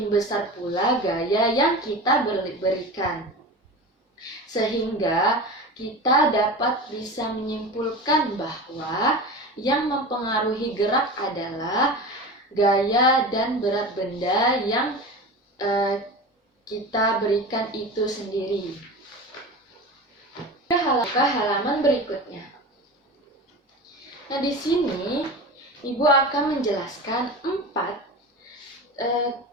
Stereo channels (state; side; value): normal; both; correlation 0.29